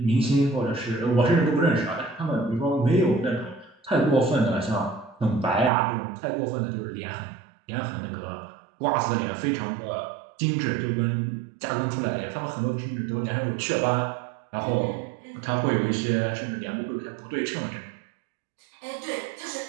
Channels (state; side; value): drops out; left; at 5.7 s